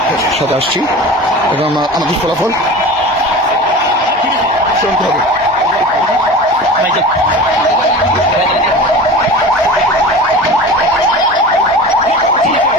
সাথে আসছি এবং আমাদের ফলাফল শুনতে হবে।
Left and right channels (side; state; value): both; normal; correlation 0.34